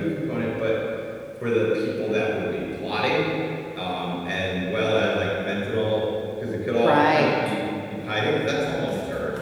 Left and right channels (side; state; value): both; identical; correlation 1.00